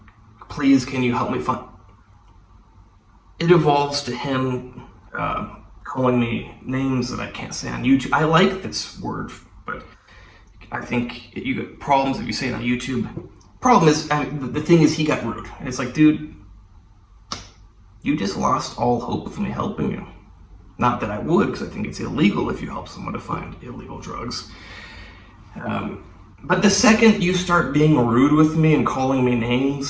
Please, can you help me find? It evolves to him calling me names that I can't say on YouTube. I like this word, but I think you get problems if you say it on YouTube. Problem is, the thing is, he got rude. And it's like, dude, you just lost all hope of me helping you. Not that I would, because I think it's illegal if you help someone to find illegal drugs. But the second you start being rude with me and calling me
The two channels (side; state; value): both; identical; correlation 1.00